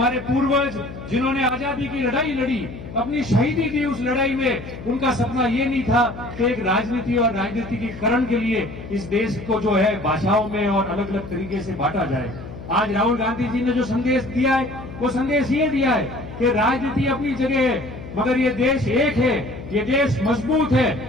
पूर्वज जिन्होंने आजादी की लड़ाई लड़ी, अपनी शहीदी दी, उस लड़ाई में उनका सपना ये नहीं था कि एक राजनीति और राजनीतिकीकरण के लिए इस देश को जो है भाषाओं में और अलग अलग तरीके से बांटा जाए। आज राहुल गांधी जी ने जो संदेश दिया है वो संदेश ये दिया है कि राजनीति अपनी जगह है, मगर ये देश एक है, ये देश मजबूत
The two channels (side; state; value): left; noise; hum, 13 dB below the sound